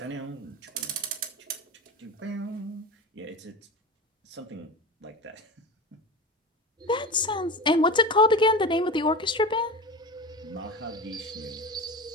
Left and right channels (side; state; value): both; normal; correlation 0.28